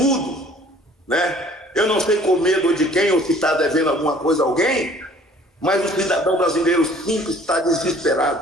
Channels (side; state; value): both; normal; correlation 0.54